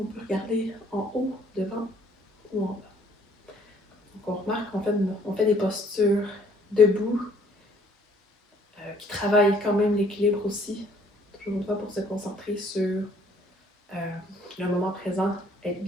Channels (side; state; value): both; normal; correlation 0.61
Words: regarder en haut, devant ou en bas. Donc on remarque qu'on fait des postures debout qui travaillent quand même l'équilibre aussi. Toujours une fois pour se concentrer sur le moment présent, être